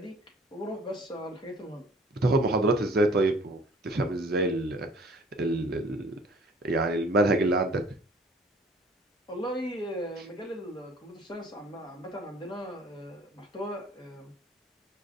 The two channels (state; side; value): normal; both; correlation 0.53